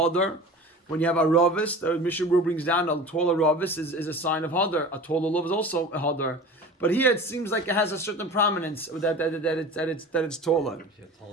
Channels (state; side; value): normal; both; correlation 0.37